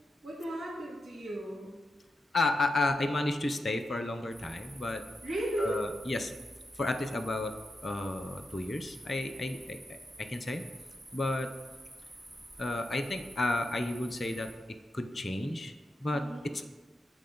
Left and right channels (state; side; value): normal; both; correlation 0.88